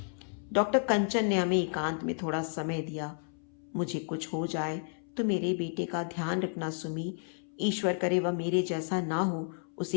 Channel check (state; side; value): silent; right; 57 dB below the other